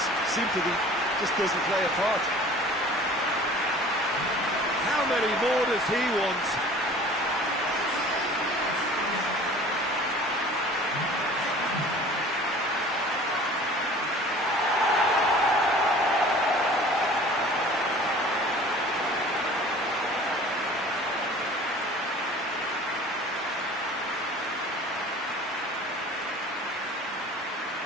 Sympathy just doesn't play a part. How many more does he want?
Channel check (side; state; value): both; normal; correlation 0.45